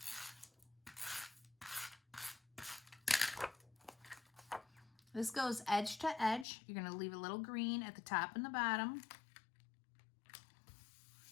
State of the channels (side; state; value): right; drops out; at 6.5 s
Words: This goes edge to edge. You're going to leave a little green at the top and the bottom.